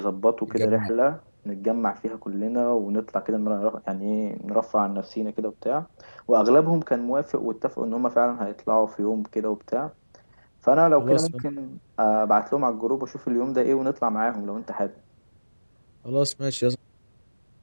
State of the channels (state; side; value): inverted; both; correlation -1.00